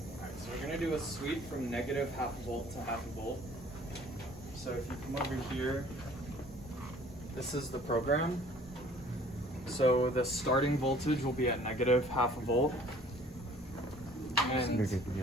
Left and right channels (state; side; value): normal; both; correlation 0.53